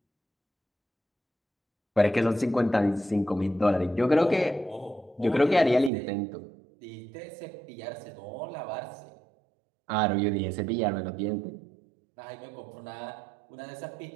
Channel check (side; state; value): left; drops out; at 5.9 s